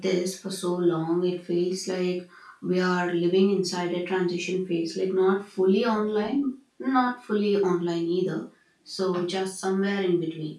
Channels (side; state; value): both; identical; correlation 1.00